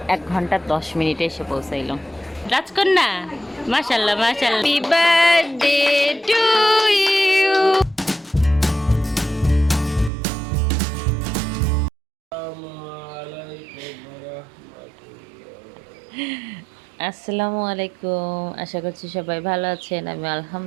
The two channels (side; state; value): left; drops out; at 10.1 s